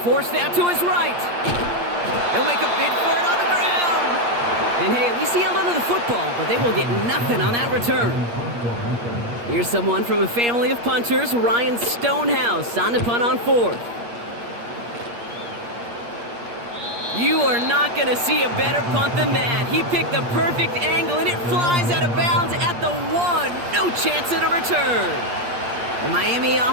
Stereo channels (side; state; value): left; late; 8.5 ms